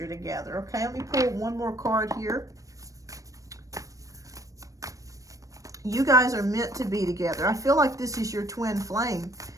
together. Okay, let me pull one more card here. You guys are meant to be together. I feel like this is your twin flame.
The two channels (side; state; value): left; late; 0.16 ms